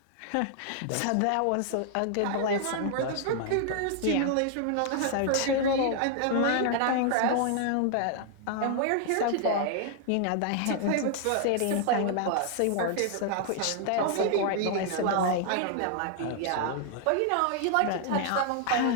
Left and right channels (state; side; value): different; both; correlation 0.00